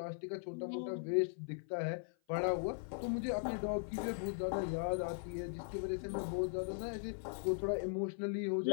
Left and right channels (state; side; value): silent; right; 51 dB below the other